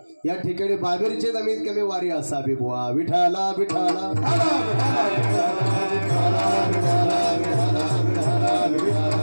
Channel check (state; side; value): inverted; both; correlation -1.00